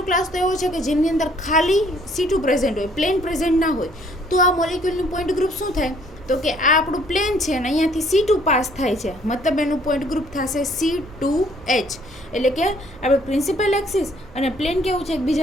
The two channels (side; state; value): right; noise; rumble, 20 dB below the sound